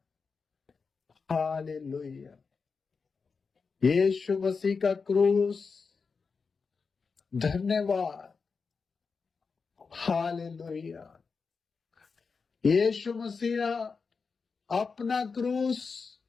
hallelujah. यीशु मसीह का क्रूस, धन्यवाद। हालेलुया। यीशु मसीह अपना क्रूस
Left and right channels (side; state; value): right; quieter; 5.0 dB